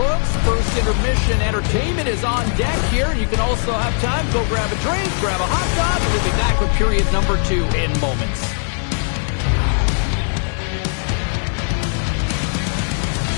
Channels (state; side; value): silent; right; 62 dB below the other